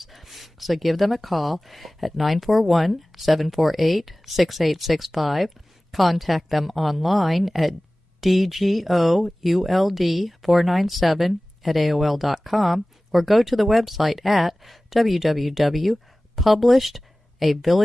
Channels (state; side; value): normal; both; correlation 0.98